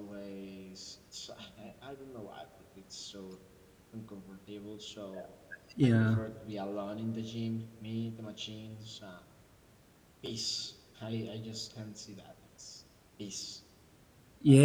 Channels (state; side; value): identical; both; correlation 1.00